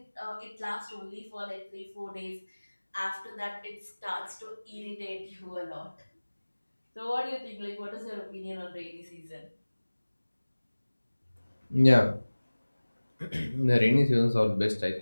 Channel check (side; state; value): both; inverted; correlation -1.00